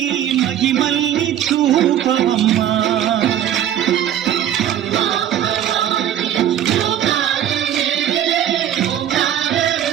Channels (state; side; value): quieter; left; 10.7 dB